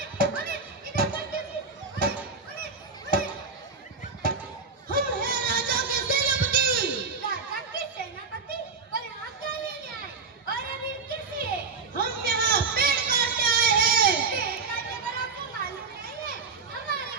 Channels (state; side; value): quieter; left; 4.6 dB